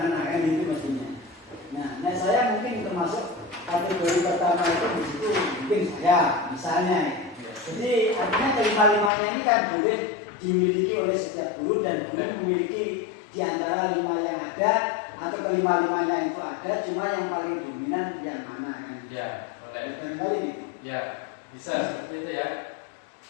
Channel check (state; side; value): drops out; right; at 9.1 s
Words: kan itu mestinya. Nah saya mungkin termasuk kategori pertama itu di situ mungkin saya misalnya. Jadi artinya kelima-limanya ini kan boleh dimiliki oleh setiap guru dan guru memiliki di antara 5 yang ada atau kelima-limanya itu ada, cuma yang paling dominan yang mana kan? Ya, boleh. Barangkali Ya, bisa seperti itu ya.